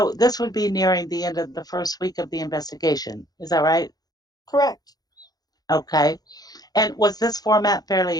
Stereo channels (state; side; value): late; right; 0.19 ms